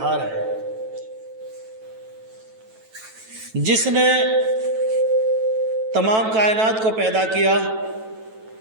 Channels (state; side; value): late; left; 9.2 ms